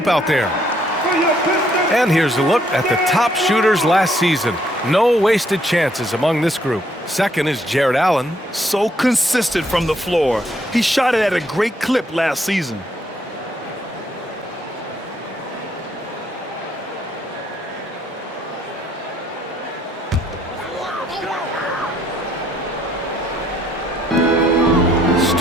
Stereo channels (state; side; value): normal; both; correlation 0.69